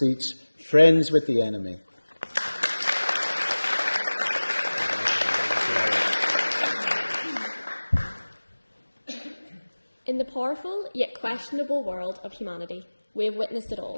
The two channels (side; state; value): both; inverted; correlation -1.00